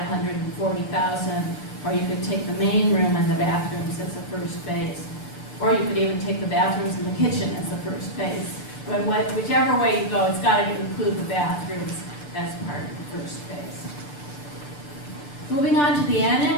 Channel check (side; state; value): right; late; 6.8 ms